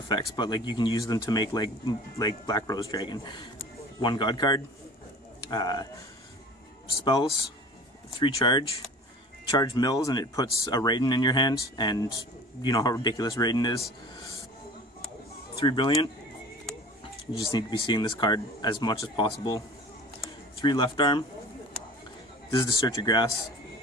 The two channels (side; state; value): both; normal; correlation 0.43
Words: but like you can use them to make like Black Rose Dragon. 1 God card. Spells. 3 charge. Charge mills, and it puts a Raiden in your hand, and you know how ridiculous Raiden is. 3 Brilliant. You just need to be seeing this card as much as possible. 3 Left Arm. This is to search your grass,